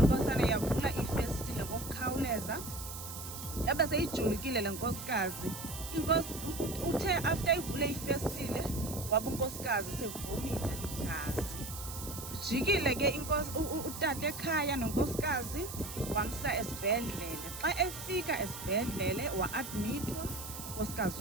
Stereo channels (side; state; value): right; noise; hiss, 9 dB below the sound